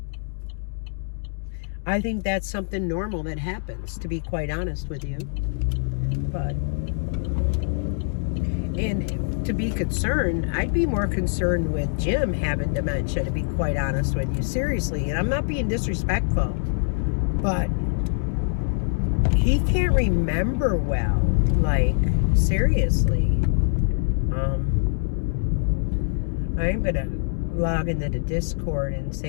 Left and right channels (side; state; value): right; silent; digital silence